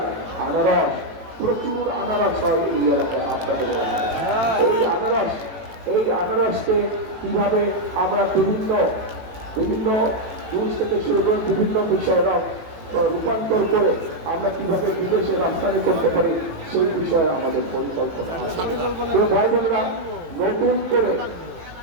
আনারস, প্রচুর আনারস হয় এই এলাকায়। আপনাদের এই আনারসকে কিভাবে আমরা বিভিন্ন জিনিস থেকে শুরু করে বিভিন্ন বিষয়ে রূপান্তর করে আমরা কিভাবে বিদেশে রপ্তানি করতে পারি, সেই বিষয়ে আমাদের পরিকল্পনা আছে। ভাই বোনেরা,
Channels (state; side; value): late; left; 18 ms